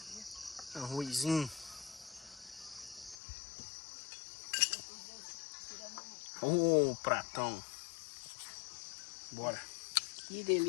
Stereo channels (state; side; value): drops out; right; at 3.2 s